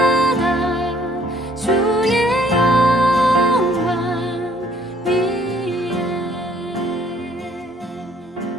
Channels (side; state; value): both; normal; correlation 0.62